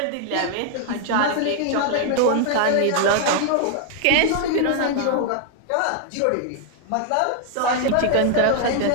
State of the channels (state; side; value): different; both; correlation 0.00